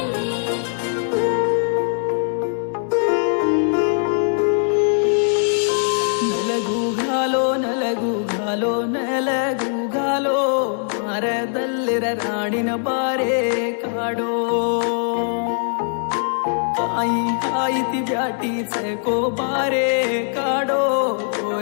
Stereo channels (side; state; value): right; silent; digital silence